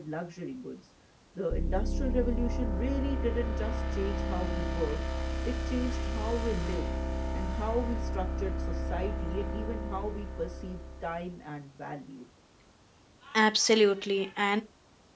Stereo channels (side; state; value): both; identical; correlation 1.00